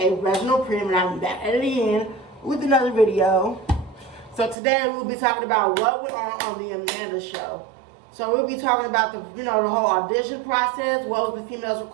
Reginald Prim, and I'm back at it again with another video. So today we'll be talking about what went on the Amanda show. So we'll be talking about the whole audition process, what was the females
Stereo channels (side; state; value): left; drops out; at 4.5 s